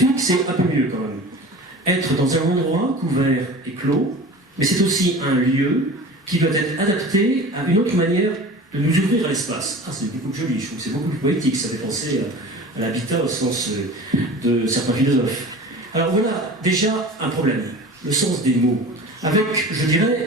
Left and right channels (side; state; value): both; normal; correlation 0.38